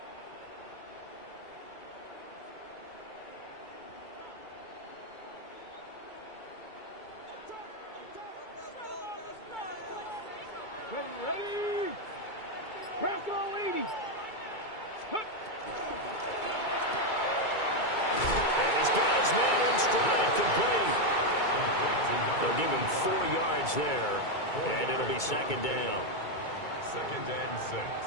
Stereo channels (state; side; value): late; right; 2.3 ms